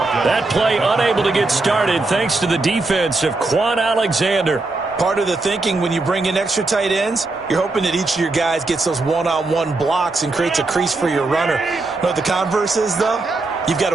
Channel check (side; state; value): left; quieter; 3.3 dB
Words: That play unable to get started thanks to the defense of Quan Alexander. Part of the thinking when you bring in extra tight ends, you're hoping that each of your guys gets those one-on-one blocks and creates a crease for your runner. You know what the converse is, though? You've got